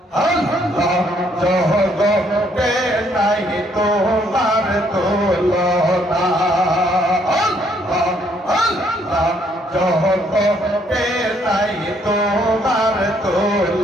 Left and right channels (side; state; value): both; normal; correlation 0.68